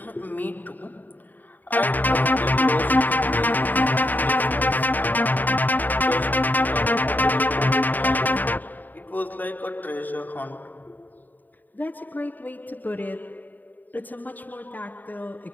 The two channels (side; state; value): right; late; 0.086 ms